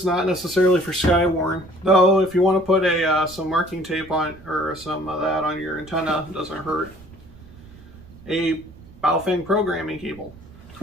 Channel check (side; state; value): right; noise; rumble, 21 dB below the sound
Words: not necessarily for Skywarn, though if you want to put some marking tape on, or some of that on your antenna, it doesn't hurt. A Baofeng programming cable.